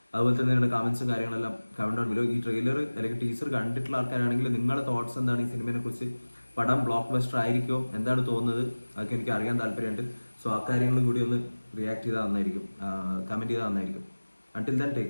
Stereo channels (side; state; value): both; inverted; correlation -1.00